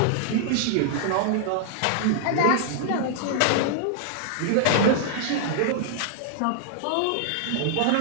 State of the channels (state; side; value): different; both; correlation 0.00